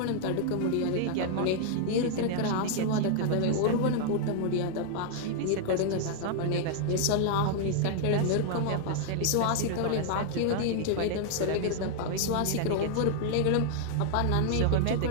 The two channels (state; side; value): different; both; correlation -0.01